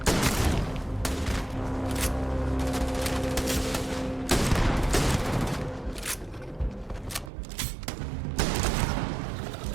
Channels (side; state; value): left; drops out; at 7.3 s